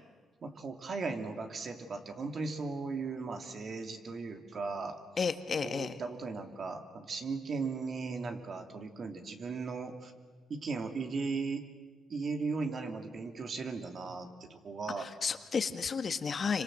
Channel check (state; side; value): normal; both; correlation 0.80